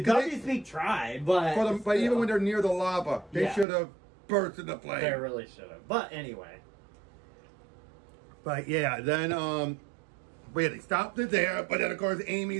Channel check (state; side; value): drops out; left; at 3.7 s